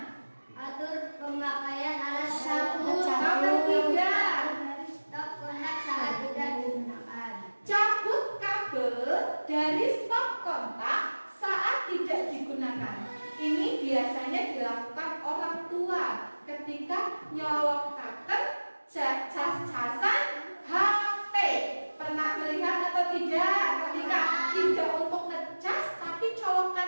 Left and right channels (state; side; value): inverted; both; correlation -1.00